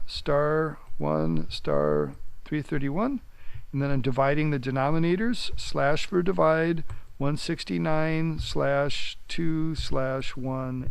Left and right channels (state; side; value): identical; both; correlation 1.00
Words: star 331, and then I'm dividing the denominators, slash for divide,